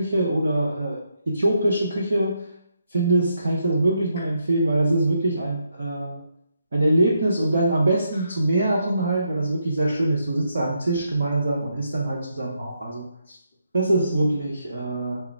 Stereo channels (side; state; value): both; inverted; correlation -0.79